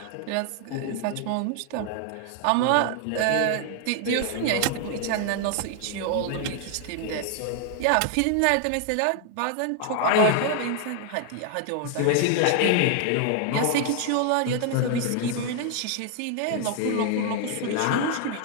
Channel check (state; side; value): different; both; correlation 0.00